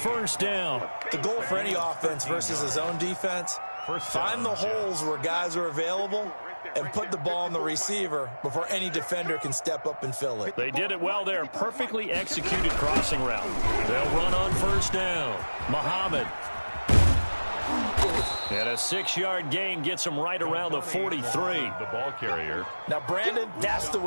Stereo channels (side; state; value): both; inverted; correlation -1.00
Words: down. The goal for any offense versus his own defense, find the holes where guys are available and put the ball on the receiver before any defender can step up and fill it. They did it well there. Perfectly executed crossing route. They'll run on first down. Muhammad. And a 6-yard gain gets him right around the 43. The ball carrier. Now, Brandon, that's the